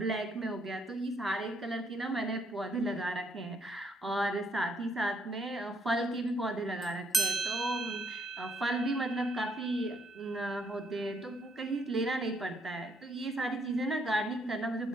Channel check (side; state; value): both; normal; correlation 0.71